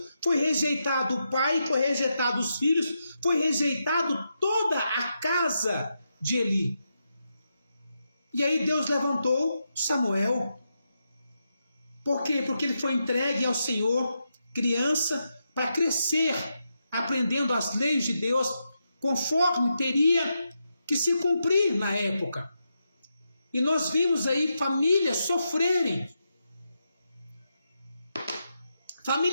foi rejeitado o pai, foi rejeitado os filhos, foi rejeitado toda a casa de Eli. E aí Deus levantou Samuel. Por quê? Porque ele foi entregue ao Senhor, criança, para crescer, aprendendo as leis de Deus, conforme teria que se cumprir na época. E nós vimos aí famílias sofrerem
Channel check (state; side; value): inverted; both; correlation -0.85